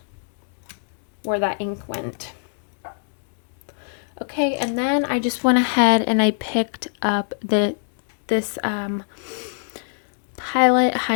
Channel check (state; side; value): silent; right; digital silence